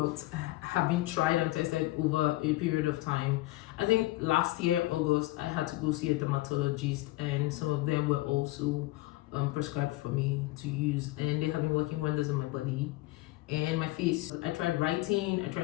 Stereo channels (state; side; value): quieter; right; 18.5 dB